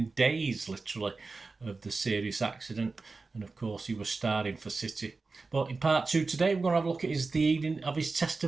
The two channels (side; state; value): left; quieter; 3.9 dB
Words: days, literally, of the serious accident. And of course, he was starting for City. But in part 2 today, we're going to have a look at the evening of his